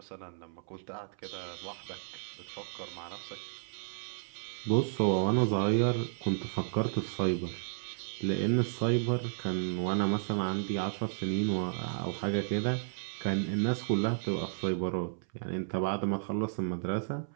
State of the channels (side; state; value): left; silent; 56 dB below the other